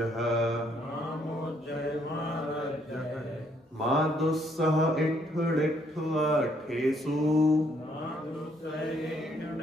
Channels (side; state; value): both; normal; correlation 0.69